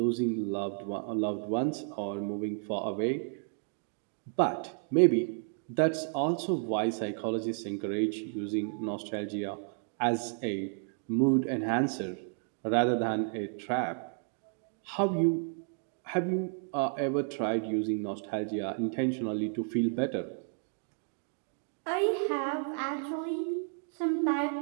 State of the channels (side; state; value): left; silent; 56 dB below the other